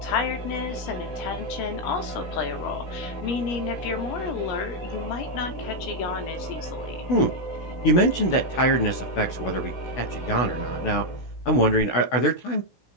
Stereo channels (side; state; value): right; late; 16 ms